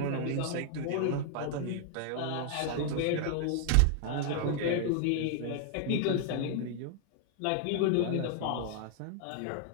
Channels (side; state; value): both; different; correlation 0.00